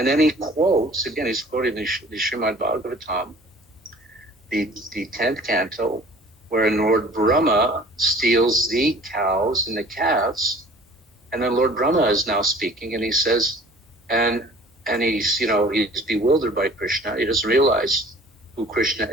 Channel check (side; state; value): both; normal; correlation 0.48